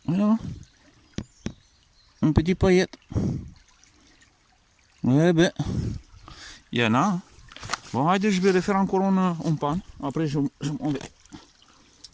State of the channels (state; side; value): identical; both; correlation 1.00